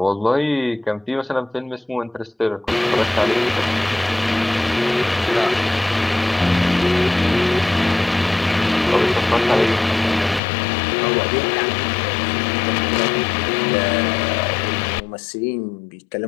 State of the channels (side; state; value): right; drops out; at 10.4 s